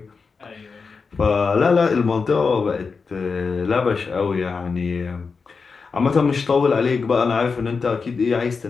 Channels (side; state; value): right; quieter; 4.9 dB